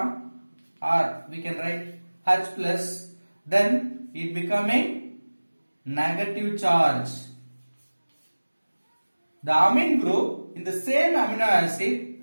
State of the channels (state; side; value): inverted; both; correlation -1.00